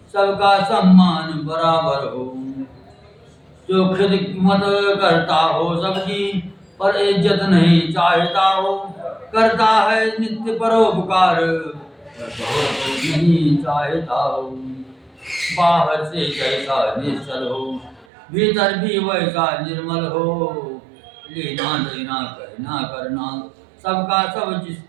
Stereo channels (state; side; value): drops out; left; at 18.1 s